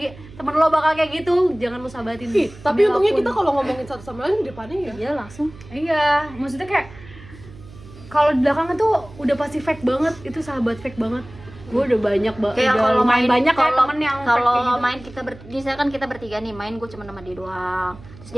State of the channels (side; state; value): right; noise; hum, 19 dB below the sound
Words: bakal kayak gitu, jangan lu sahabatin. Tapi Demi untungnya apapun. kita kalau ngomongin satu sama lain di depannya ya Iya langsung. Iya, maksudnya kayak kalau di belakang tuh udah pasti fake banget, itu sahabat fake banget. Gue udah banyak Kayak kalau main banyak kayak kalau temen yang fake kalau kayak gitu. main kita misalkan kita bertiga nih main, gue cuma sama dia doang, terus